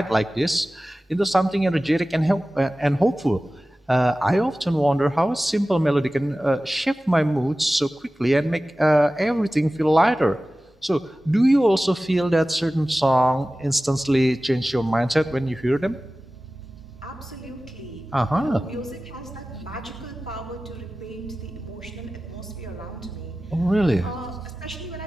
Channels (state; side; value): normal; both; correlation 0.96